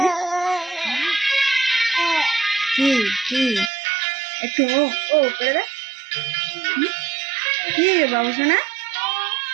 কি কি একটু ও করে দে। কি বাবু সোনা,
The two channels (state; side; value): drops out; left; at 3.7 s